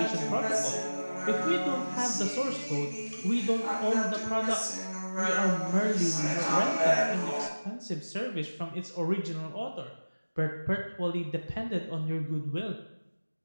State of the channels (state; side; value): inverted; both; correlation -1.00